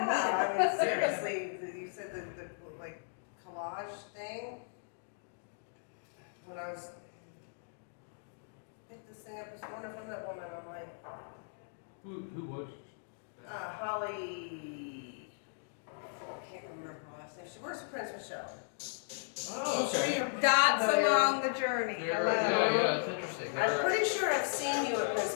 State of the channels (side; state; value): right; silent; digital silence